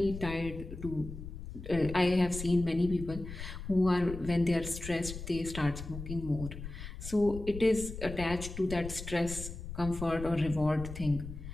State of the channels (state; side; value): noise; left; rumble, 9 dB below the sound